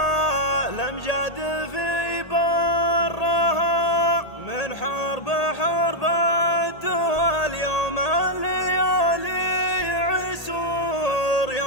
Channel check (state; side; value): late; right; 1.8 ms